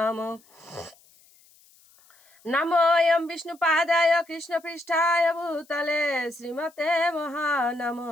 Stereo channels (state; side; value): noise; left; hiss, 29 dB below the sound